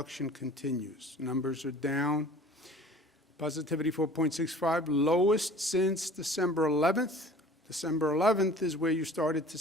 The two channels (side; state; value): both; normal; correlation 0.46